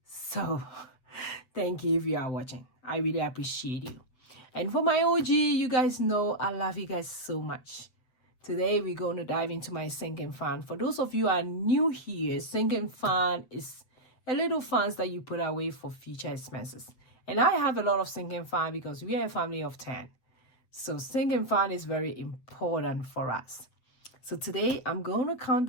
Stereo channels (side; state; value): right; late; 7.9 ms